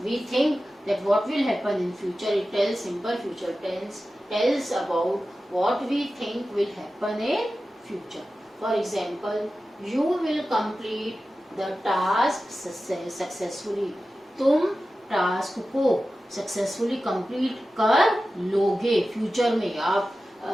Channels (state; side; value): normal; both; correlation 0.94